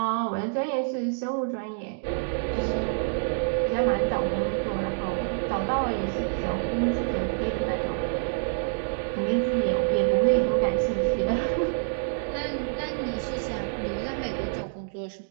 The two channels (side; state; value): left; silent; digital silence